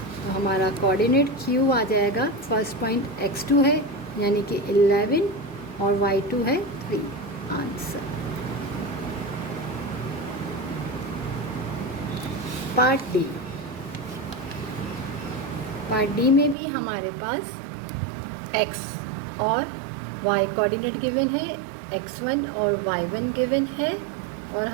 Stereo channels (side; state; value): left; drops out; at 16.6 s